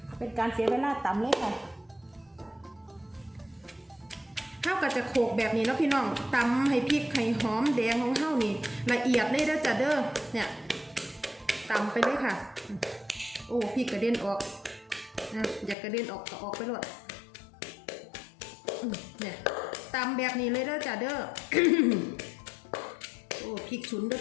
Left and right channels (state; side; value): drops out; right; at 15.8 s